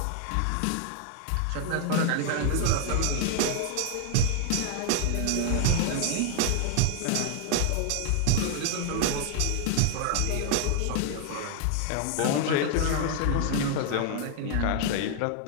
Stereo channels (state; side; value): different; both; correlation 0.00